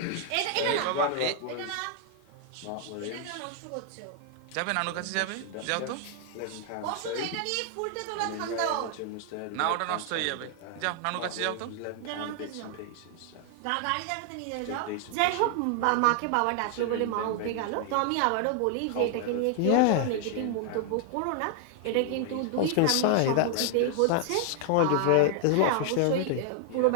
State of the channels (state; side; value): different; both; correlation 0.00